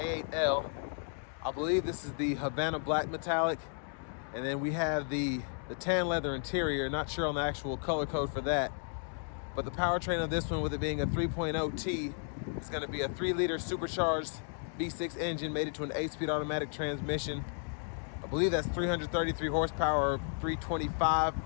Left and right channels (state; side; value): silent; right; 55 dB below the other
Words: L. I believe this is the Havana black metallic. And then we have the tan leather interior. Not sure on the actual color code for that. But the powertrain of this one, with it being a 3.0T, is going to be a 3-liter supercharged V6 engine mated to an 8-speed automatic transmission. I believe that's 333 horsepower or 325